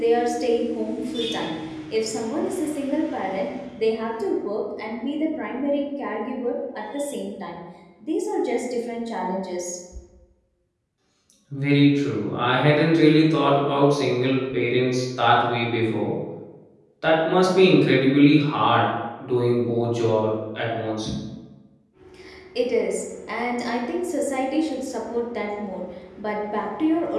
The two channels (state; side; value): identical; both; correlation 1.00